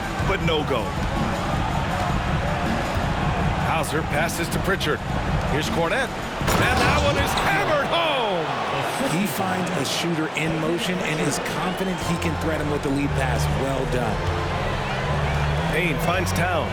but no go. Hauser passes to Pritchard. Here's Cornette. And that one is hammered home. He finds a shooter in motion and is confident he can threat him with the lead pass. Well done. Payne finds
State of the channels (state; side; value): identical; both; correlation 1.00